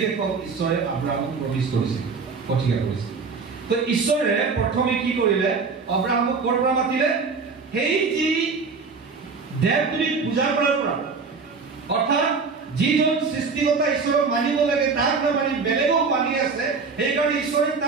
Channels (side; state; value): left; quieter; 4.8 dB